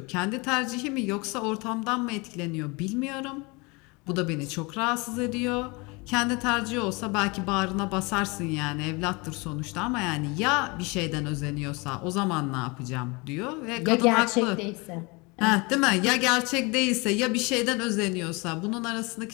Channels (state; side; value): quieter; right; 27.3 dB